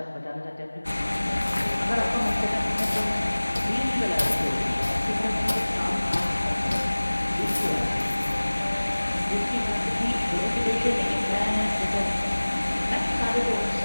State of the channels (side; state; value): both; inverted; correlation -1.00